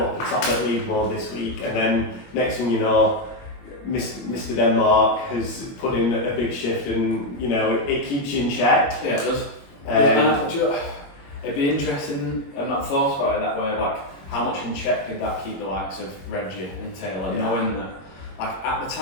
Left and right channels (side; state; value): right; late; 21 ms